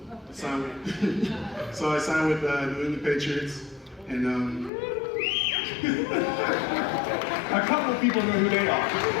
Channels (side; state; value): right; drops out; at 4.7 s